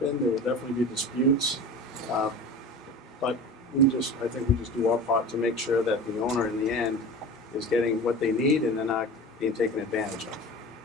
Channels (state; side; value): normal; both; correlation 0.34